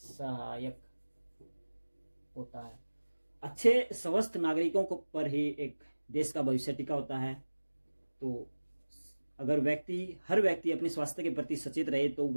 होता है। अच्छे स्वस्थ नागरिकों को पर ही एक देश का भविष्य टिका होता है। तो अगर हर व्यक्ति अपने स्वास्थ्य के प्रति सचेत रहे तो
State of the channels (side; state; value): both; inverted; correlation -1.00